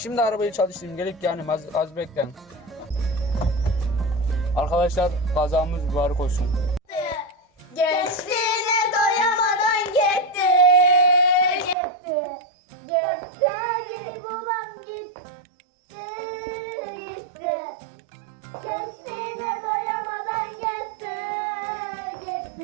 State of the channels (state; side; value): drops out; left; at 11.8 s